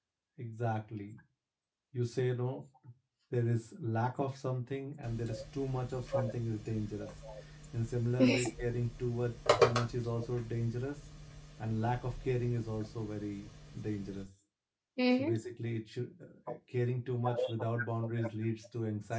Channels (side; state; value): both; identical; correlation 1.00